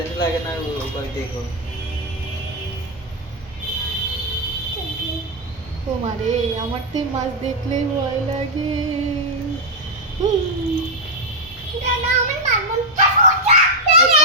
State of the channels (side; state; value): both; normal; correlation -0.01